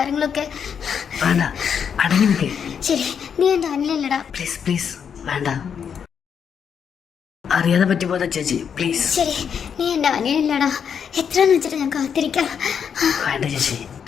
വേണ്ട, അടങ്ങി നിൽക്കേ. ശരി, നീ എൻ്റെ അനിലല്ലടാ. പ്ലീസ് പ്ലീസ് വേണ്ട. അറിയാതെ പറ്റിപ്പോതാ ചേച്ചി, പ്ലീസ്. ശരി, നീ എൻ്റെ അനിയനല്ലടാ. എത്രയെന്ന് വെച്ചിട്ട് ഞാൻ കാത്തിരിക്കാം. വേണ്ട ചേച്ചി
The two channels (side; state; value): right; quieter; 7.4 dB